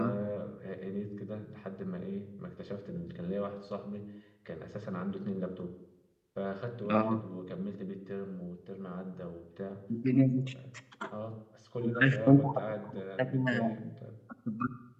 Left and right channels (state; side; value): identical; both; correlation 1.00